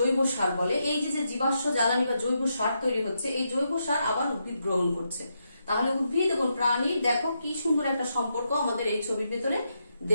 সার বলে, এই যে জীবাশ্ম জ্বালানি বা জৈব সার তৈরি হচ্ছে, এই জৈব সার আবার উদ্ভিদ গ্রহণ করছে। তাহলে উদ্ভিদ এবং প্রাণীর দেখো কি সুন্দর একটা সম্পর্ক আমাদের এই ছবির ভেতরে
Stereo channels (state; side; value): inverted; both; correlation -0.82